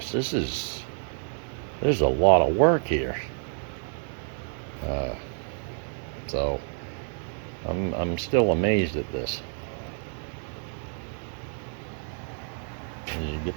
There's a lot of work here. So I'm still amazed at this. And you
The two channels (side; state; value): left; silent; 59 dB below the other